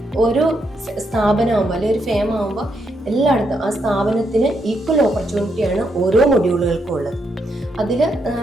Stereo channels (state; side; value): normal; both; correlation 0.79